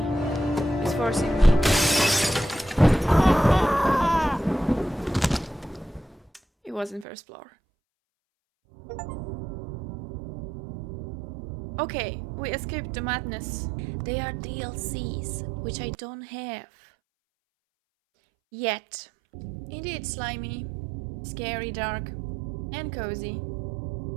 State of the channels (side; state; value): left; drops out; at 7.1 s